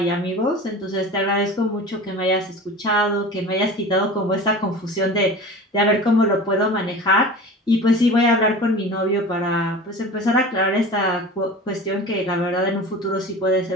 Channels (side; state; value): both; normal; correlation 0.36